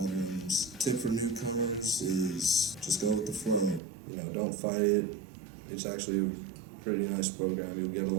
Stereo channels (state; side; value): drops out; left; at 3.8 s